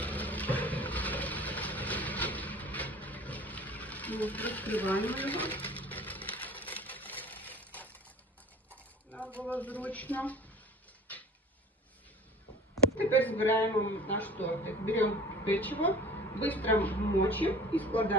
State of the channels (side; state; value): both; normal; correlation 0.42